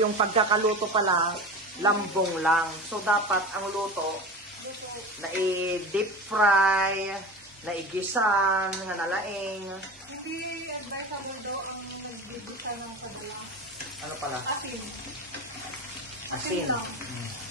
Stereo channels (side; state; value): both; normal; correlation 0.30